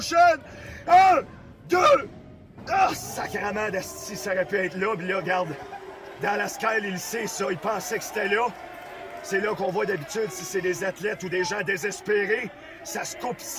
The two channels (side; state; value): both; identical; correlation 1.00